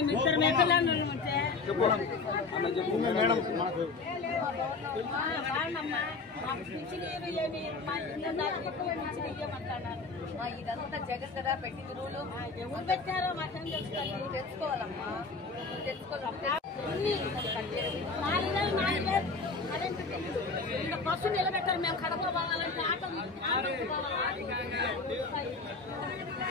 మేకలను ఉంటే మేడం ఇదంతా జగన్ కదా పెట్టింది రూలు. ఎవరు పెట్టారో మాత్రం తెలుసుకోవాలి. తెలుసుకోవాలమ్మా, తెలుసుకోవాలి. ఇంకా బస్సు నిలబెట్టారు. మేము కడప పోవాలంటే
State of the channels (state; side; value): quieter; right; 4.1 dB